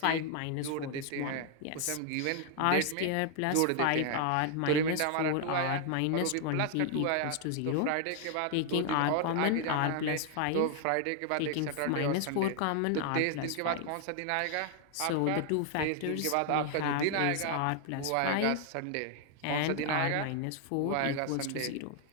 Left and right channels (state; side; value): different; both; correlation 0.00